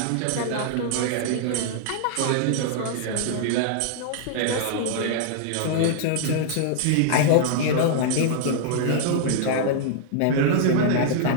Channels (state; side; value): different; both; correlation -0.01